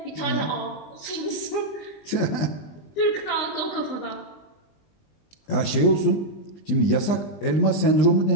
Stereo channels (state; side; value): late; right; 20 ms